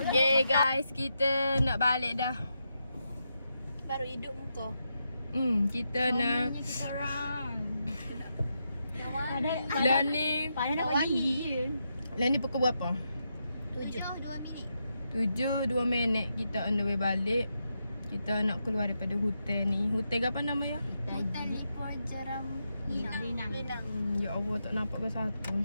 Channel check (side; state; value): both; inverted; correlation -0.84